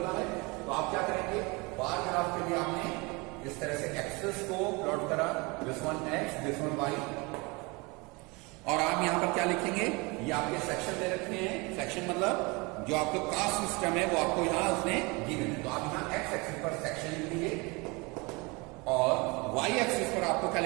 है। तो आप क्या करेंगे? बार ग्राफ के लिए आपने इस तरह से एक्सेस को प्लॉट करा, this one x, this one y, और आप यहां पर क्या लिखेंगे? ये आपके सेक्शन दे रखे हैं। सेक्शन मतलब जो आपका कास्ट सिस्टम है वो आपको यहां उसने गिवन है। तो आप यहां एक्स एक्सिस पर सेक्शन लिख लीजिए और वाई एक्सिस पर आपको क्या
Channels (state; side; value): quieter; left; 26.8 dB